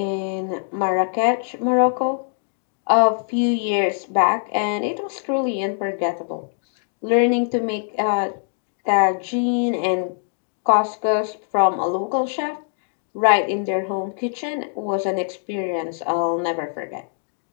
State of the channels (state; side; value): silent; right; digital silence